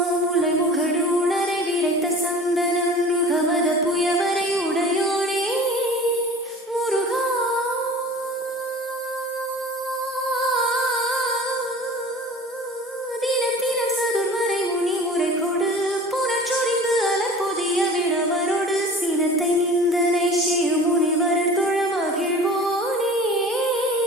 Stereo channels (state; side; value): normal; both; correlation 0.41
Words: முலை முகடு உணரை விரைத்த சந்தனம் முகமத புயவரை உடையோனே முருகா தினம் தினம் சதுர்வரை முனி முறை கொடு புனர்ச்சொரிந்து அலர் பொதிய விழவரோடு சினத்தை நிந்தனை செய்யும் முனிவரர் தொழ மகிழ்வோனே